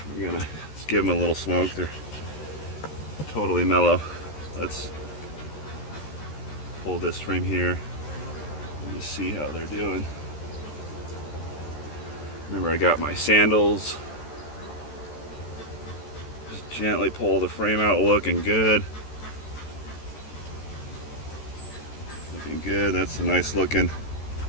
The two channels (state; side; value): late; right; 13 ms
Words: We're gonna just give them a little smoke. They're totally mellow. Let's pull this frame here and just see how they're doing. Remember, I got my sandals. Just gently pull the frame out, looking good. Looking good. That's a nice looking.